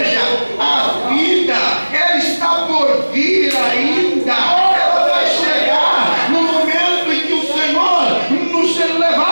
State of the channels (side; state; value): both; inverted; correlation -1.00